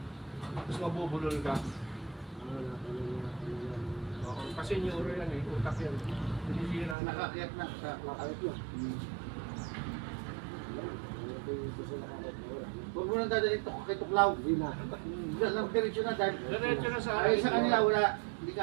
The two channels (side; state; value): left; drops out; at 7.0 s